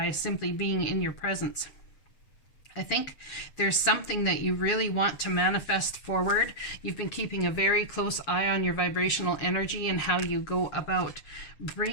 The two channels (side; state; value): right; late; 7.3 ms